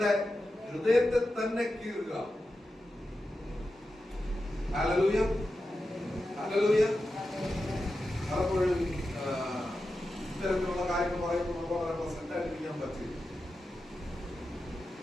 ഹൃദയത്തെ തന്നെ കീറുക. Hallelujah, hallelujah. പലപ്പോഴും ഇത്തരത്തിലുള്ള കാര്യങ്ങൾ പറയുമ്പോൾ നമുക്ക് വളരെ പ്രസന്റ് ആയിരിക്കാൻ പറ്റില്ല.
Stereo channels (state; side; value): normal; both; correlation 0.91